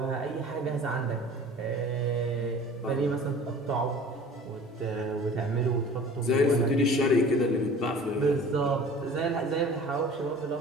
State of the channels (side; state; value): both; normal; correlation 0.44